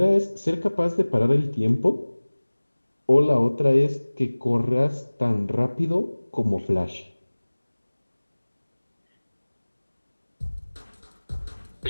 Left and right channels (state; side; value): inverted; both; correlation -1.00